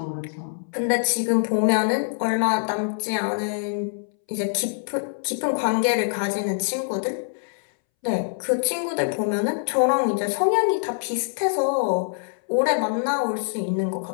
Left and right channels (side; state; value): right; silent; 62 dB below the other